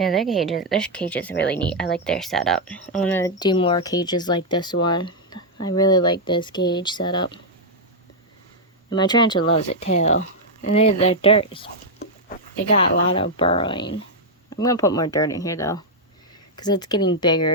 their cages are really neat. I like their setup. I want to do more cages like this one. I really like this cage setup. And my tarantula loves it too. And their dirt they got a lot of burrowing. I'm gonna put more dirt in here though, because it's getting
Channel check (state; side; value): normal; both; correlation -0.03